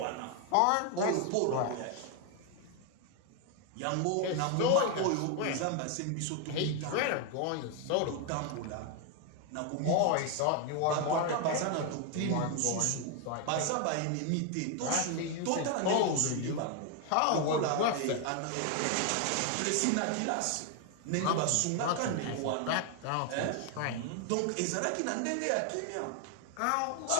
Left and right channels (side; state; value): both; different; correlation 0.01